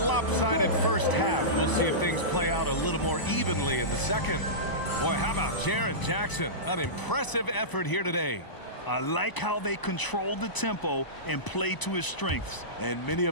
first half, we'll see if things play out a little more evenly in the second. Boy, how about Jaren Jackson? An impressive effort here today. I like how they controlled the tempo and played to his strengths. And many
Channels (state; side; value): late; right; 1.0 ms